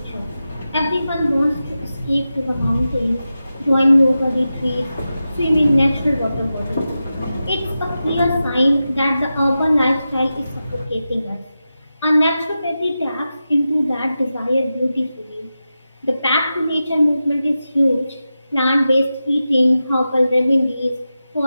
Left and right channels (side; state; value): both; inverted; correlation -0.92